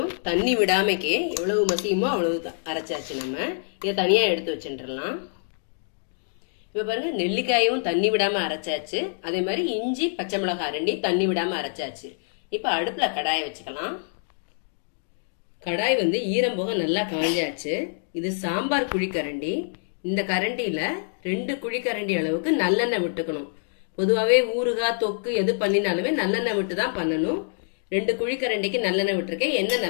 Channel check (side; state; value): right; silent; digital silence